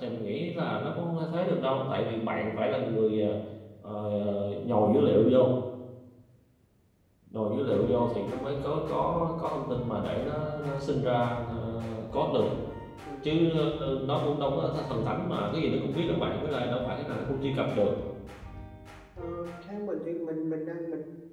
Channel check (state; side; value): identical; both; correlation 1.00